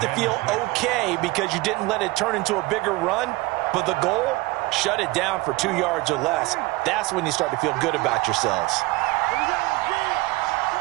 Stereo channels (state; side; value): quieter; left; 21.7 dB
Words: to feel okay because you didn't let it turn into a bigger run, but the goal, shut it down for 2 yards or less. That's when you start to feel good about yourselves.